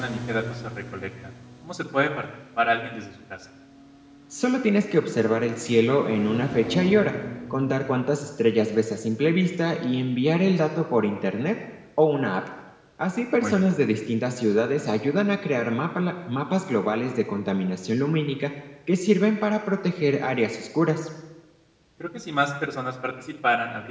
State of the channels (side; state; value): both; identical; correlation 1.00